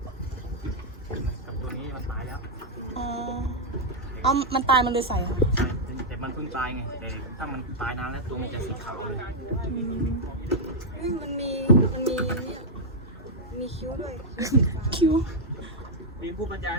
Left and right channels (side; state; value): both; normal; correlation -0.03